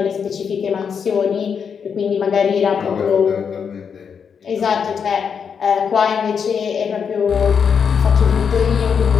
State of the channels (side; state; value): right; quieter; 6.7 dB